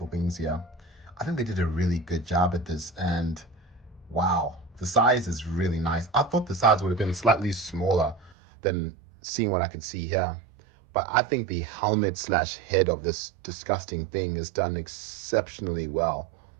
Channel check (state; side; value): drops out; left; at 8.3 s